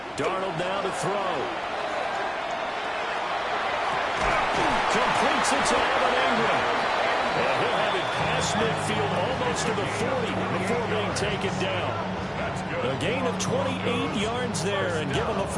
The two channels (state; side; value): identical; both; correlation 1.00